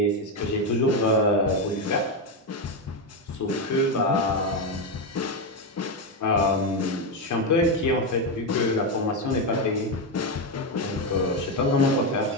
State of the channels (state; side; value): normal; both; correlation 0.09